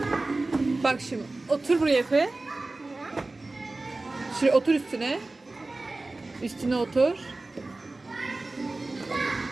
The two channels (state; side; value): quieter; left; 3.1 dB